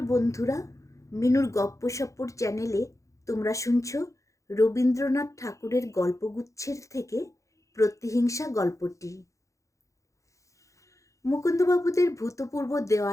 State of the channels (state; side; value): late; right; 0.15 ms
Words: বন্ধুরা, মিনুর গপ্পসপ্পর চ্যানেলে তোমরা শুনছ রবীন্দ্রনাথ ঠাকুরের গল্পগুচ্ছের থেকে প্রতিহিংসা গল্পটি। মুকুন্দবাবুদের ভূতপূর্ব